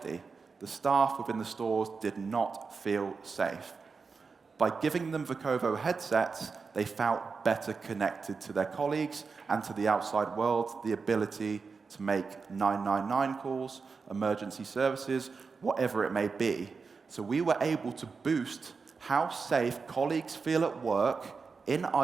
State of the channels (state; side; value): quieter; left; 4.9 dB